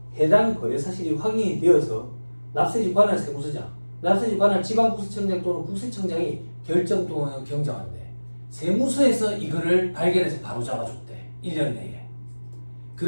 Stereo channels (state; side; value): inverted; both; correlation -1.00